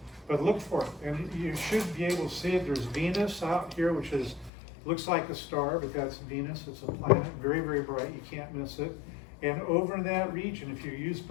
But look for it, and you should be able to see it. There's Venus out here, which looks like a star, but that's Venus. It's a planet, very, very bright. You can't miss it. And over in that region, if you use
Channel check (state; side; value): drops out; right; at 4.5 s